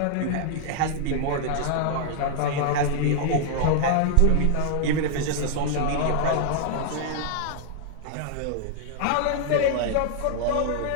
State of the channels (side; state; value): both; different; correlation -0.01